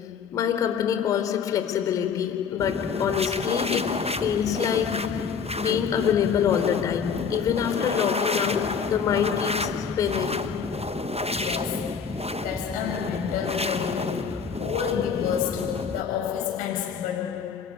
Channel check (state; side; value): quieter; right; 6.6 dB